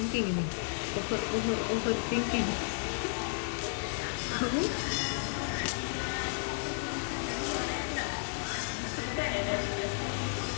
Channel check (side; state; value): right; silent; digital silence